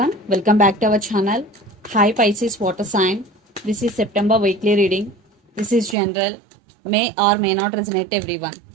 welcome back to our channel. Hi Pisces water sign. This is September weekly reading. This is general, may or may not resonate to everyone.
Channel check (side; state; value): left; drops out; at 6.0 s